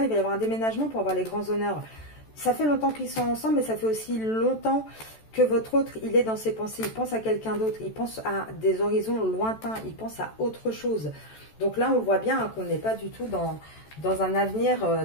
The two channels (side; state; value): right; late; 14 ms